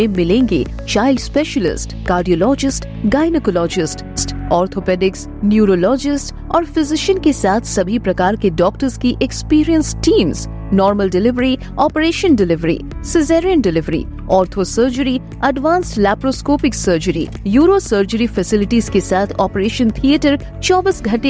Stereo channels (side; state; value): both; identical; correlation 1.00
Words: मिलेंगे child specialist, cardiologist, gynaecologist, orthopaedics, neurologist और फिजिशियन के साथ सभी प्रकार के डॉक्टर्स की experience teams, normal delivery, operation delivery, caesarean delivery, ortho surgery, advanced laparoscopic surgery, euro surgery facilities के साथ ऑपरेशन थिएटर, 24